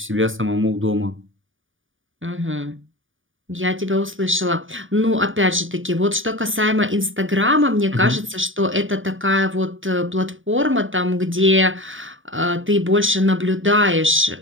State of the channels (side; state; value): left; late; 0.57 ms